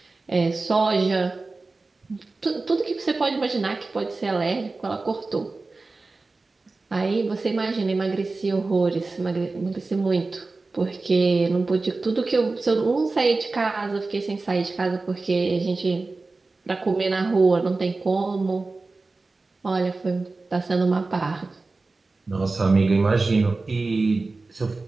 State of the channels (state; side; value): quieter; left; 3.6 dB